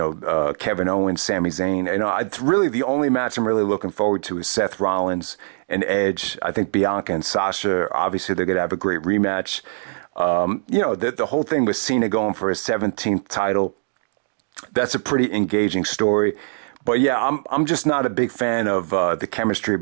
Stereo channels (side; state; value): left; silent; digital silence